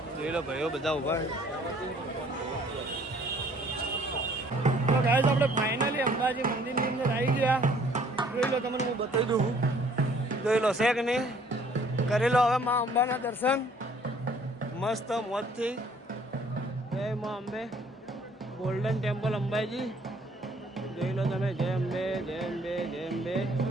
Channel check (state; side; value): normal; both; correlation 0.59